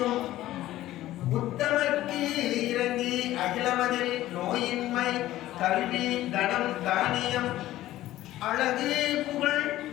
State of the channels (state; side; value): quieter; right; 14.9 dB